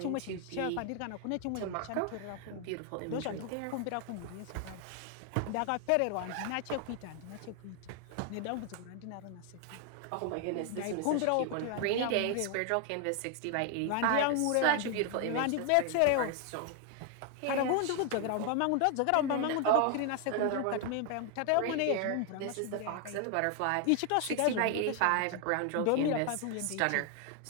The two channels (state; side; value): different; both; correlation 0.00